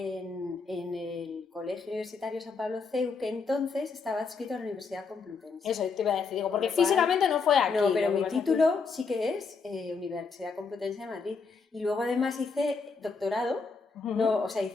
el Colegio Universitario San Pablo CEU, que entonces estaba adscrito a la Universidad Complutense. Eso te iba a decir, digo, porque físicamente no fue aquí. No, pero mi título sí que es Universidad Complutense de Madrid. Y luego además hice doctorado, no, o sea,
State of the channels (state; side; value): quieter; right; 4.8 dB